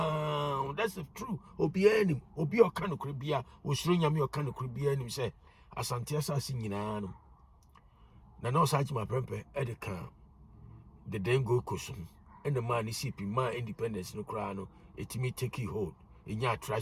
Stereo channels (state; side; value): identical; both; correlation 1.00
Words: that's true. Obi o kan kribia o shronya me o kan kribia nim say Asante assassin na no such my prempe at the camp. The then go cushion. And the man is sipping my independence no crown, it me take hold in your